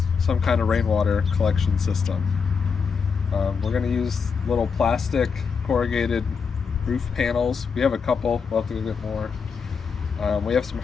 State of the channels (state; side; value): quieter; right; 5.8 dB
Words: some kind of rainwater collection system. We're going to use little plastic corrugated roof panels. We have a couple, we'll have to go get more. We have some